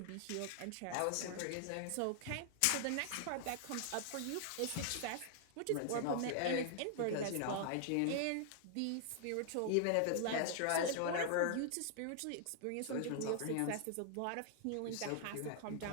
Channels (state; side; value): different; both; correlation -0.01